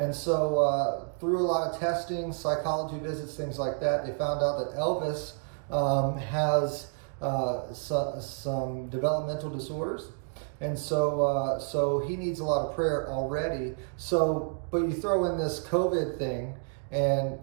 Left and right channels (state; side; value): silent; left; 58 dB below the other